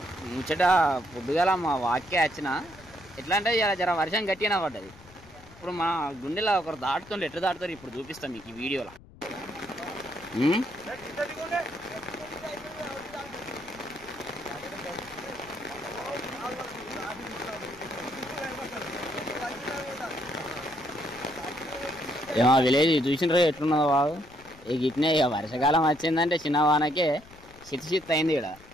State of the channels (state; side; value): noise; left; rumble, 22 dB below the sound